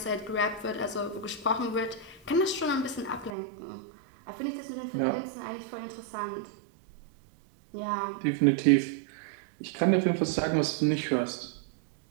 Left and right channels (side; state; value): left; drops out; at 3.3 s